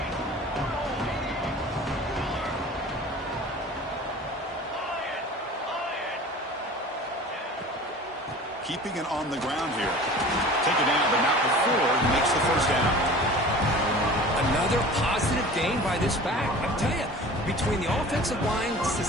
Keeping it on the ground here. Take it down, but not before he makes the first down. Another positive gain by this back. I tell you, between the offensive line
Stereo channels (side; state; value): both; normal; correlation 0.41